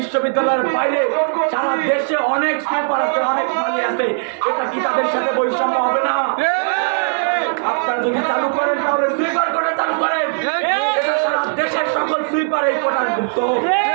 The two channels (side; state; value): left; silent; 67 dB below the other